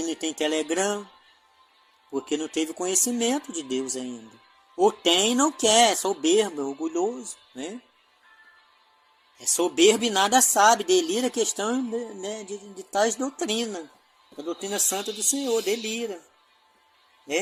e tem Telegram, porque não teve conhecimento de Deus ainda. Ou tem e não quer, é soberbo, é orgulhoso, né? É soberbo e nada sabe, delira a questão, né, de tais doutrinas. A doutrina santa do Senhor, delira,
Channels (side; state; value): both; identical; correlation 1.00